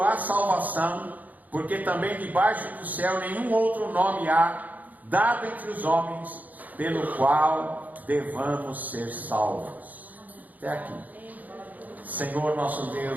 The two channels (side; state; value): left; late; 0.080 ms